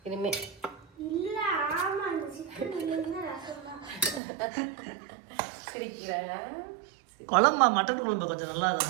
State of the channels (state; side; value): drops out; left; at 4.2 s